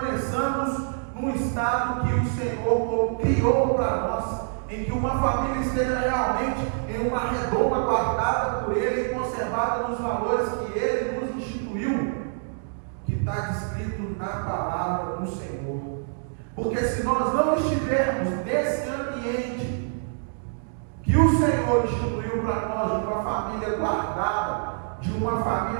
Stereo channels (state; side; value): silent; left; digital silence